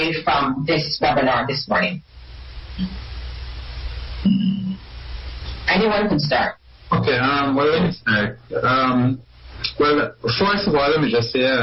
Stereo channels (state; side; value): identical; both; correlation 1.00